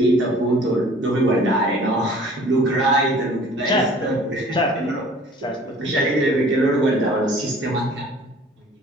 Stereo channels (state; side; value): normal; both; correlation 0.50